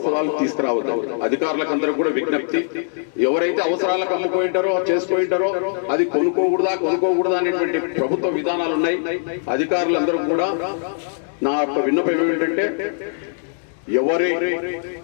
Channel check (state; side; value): silent; right; digital silence